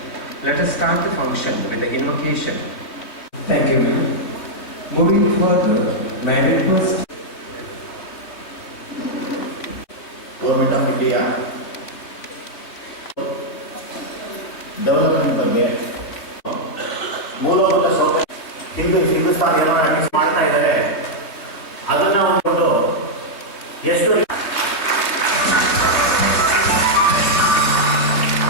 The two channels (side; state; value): right; late; 3.1 ms